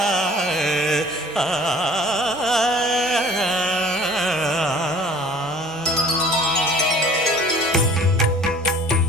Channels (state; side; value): normal; both; correlation 0.49